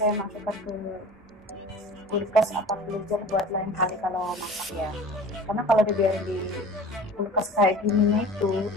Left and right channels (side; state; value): both; normal; correlation 0.41